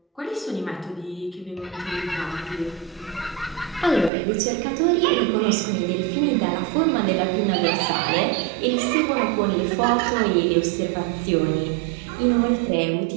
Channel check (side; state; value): left; drops out; at 4.1 s